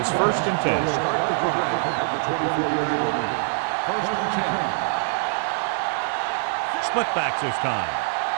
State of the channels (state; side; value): silent; left; digital silence